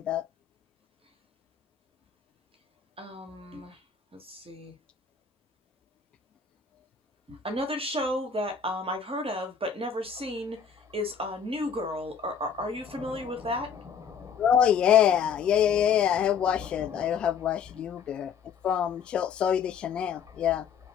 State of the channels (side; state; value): right; quieter; 7.0 dB